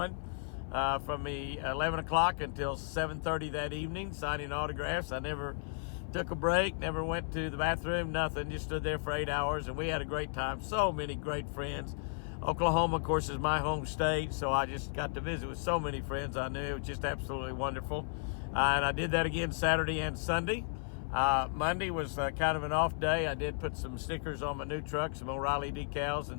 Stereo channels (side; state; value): right; silent; 55 dB below the other